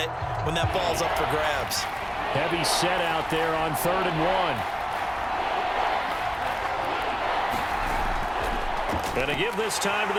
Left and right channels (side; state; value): both; identical; correlation 1.00